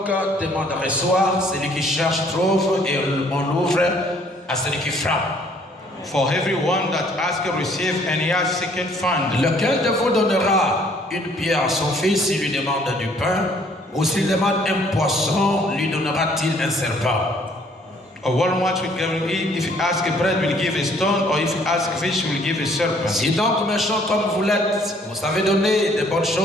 demande reçoit, celui qui cherche trouve, et on ouvre à celui qui frappe. For everyone that asketh receive, and he has seeketh find. Lequel de vous donnera une pierre à son fils s'il lui demande du pain, ou s'il demande un poisson, lui donnera-t-il un serpent? Or one much will give him, if he ask a bread, will give a stone, or if he ask a fish, will give a serpent. Si donc méchant comme vous l'êtes, vous savez donner de bonnes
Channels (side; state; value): both; normal; correlation 0.61